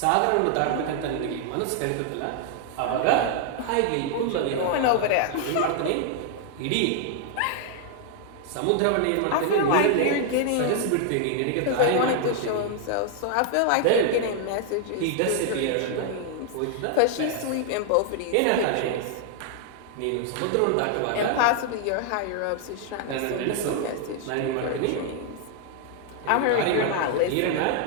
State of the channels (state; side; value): different; both; correlation 0.00